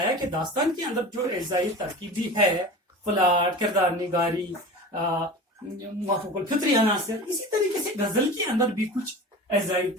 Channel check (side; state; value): both; normal; correlation 0.34